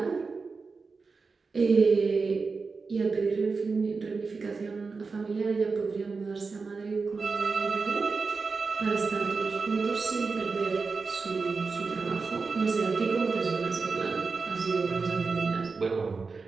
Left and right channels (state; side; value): quieter; left; 4.5 dB